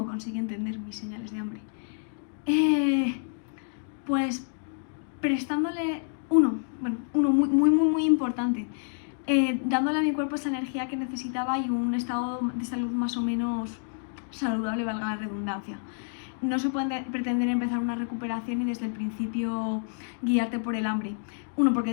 conseguí entender mis señales de hambre? Pues prestándole uno muy importante, dándole a mi cuerpo esa energía que necesitaba y un estado de salud más o menos saludable, valga la redundancia. No se puede pretender empezar una recuperación y desde el principio guiarte por el hambre. Uno, porque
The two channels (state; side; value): silent; right; digital silence